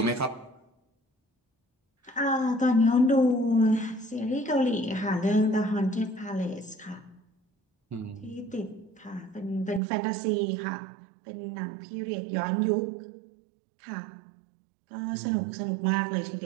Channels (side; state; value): left; drops out; at 9.8 s